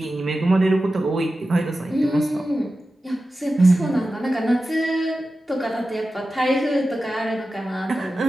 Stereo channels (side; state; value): both; normal; correlation 0.93